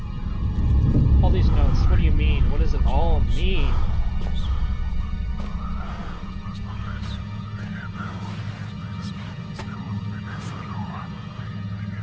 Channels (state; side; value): identical; both; correlation 1.00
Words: All these notes, what do you mean? What does it all mean?